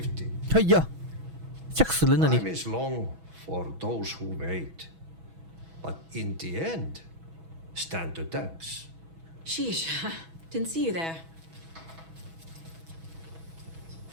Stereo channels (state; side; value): late; left; 6.1 ms